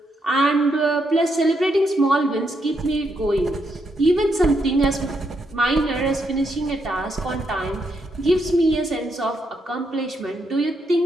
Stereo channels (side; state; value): both; normal; correlation 0.79